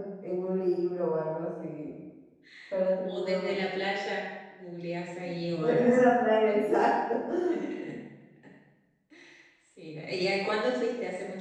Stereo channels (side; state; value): both; identical; correlation 1.00